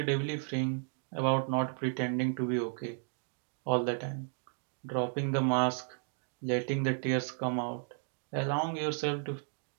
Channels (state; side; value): silent; left; 55 dB below the other